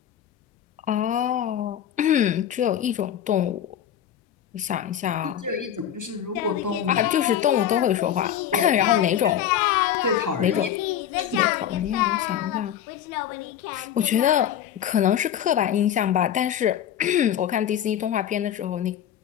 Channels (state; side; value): quieter; right; 10.0 dB